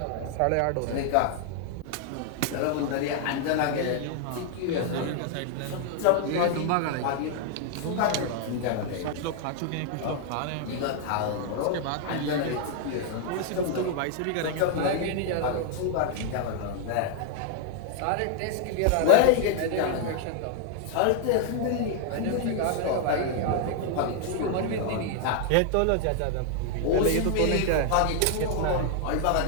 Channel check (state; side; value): different; both; correlation -0.01